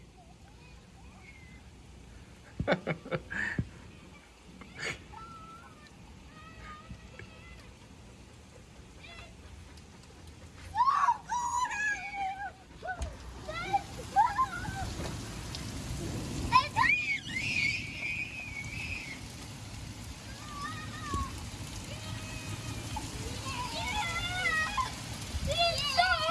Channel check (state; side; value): identical; both; correlation 1.00